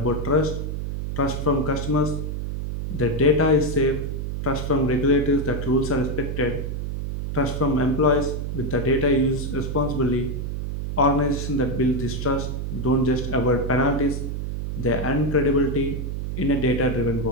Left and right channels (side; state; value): right; noise; hum, 4 dB below the sound